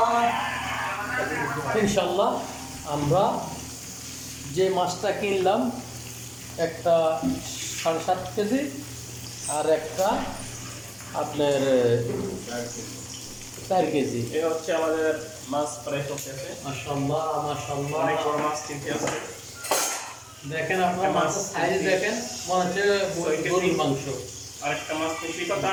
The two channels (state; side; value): identical; both; correlation 1.00